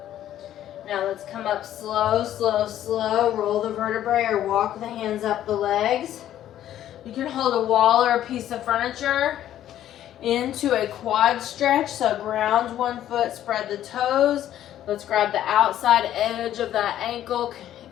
Now let's come up slow, slow, slow. Roll the vertebrae or walk the hands up the legs. You can hold a wall or a piece of furniture into a quad stretch. So ground one foot, spread the toes. Let's grab the outside edge of that ankle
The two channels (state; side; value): quieter; right; 11.9 dB